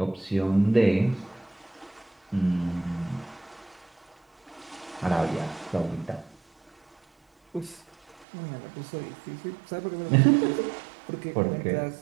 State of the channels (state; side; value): drops out; left; at 8.2 s